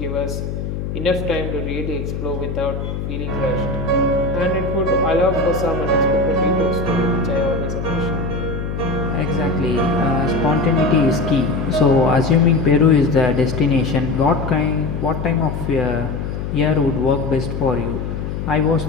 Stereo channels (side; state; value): left; noise; hum, 5 dB below the sound